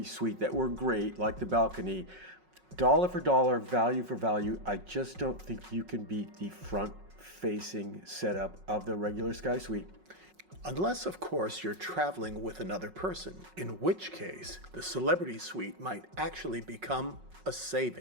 Suite that were great, like the balcony, dollar for dollar, value for value, I just don't think you can beat the front-facing setup of the regular Sky Suite. Unless, of course, you're traveling with another person, in which case the Celebrity Suite might actually become a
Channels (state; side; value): late; left; 5.4 ms